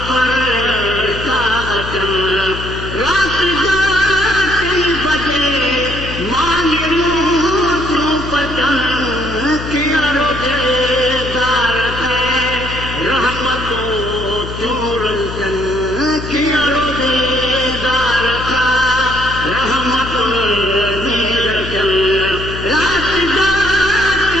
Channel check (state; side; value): noise; left; hum, 8 dB below the sound